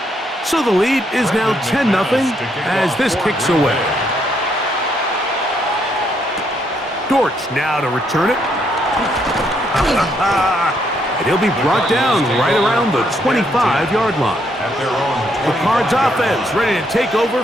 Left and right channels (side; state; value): both; normal; correlation 0.73